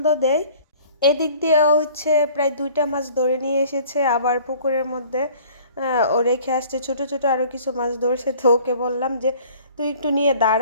দেয়। এদিক দিয়ে হচ্ছে প্রায় 2টা মাছ ধরে নিয়ে এসেছে, আবার পুকুরের মধ্যে ও রেখে আসছে ছোট ছোট আরও কিছু মাছ ধরছে। তো ওকে বললাম যে তুই একটু নিয়ে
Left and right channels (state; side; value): inverted; both; correlation -0.51